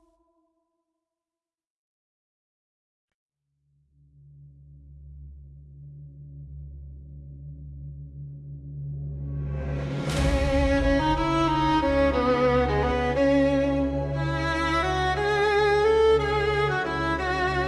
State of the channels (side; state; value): both; identical; correlation 1.00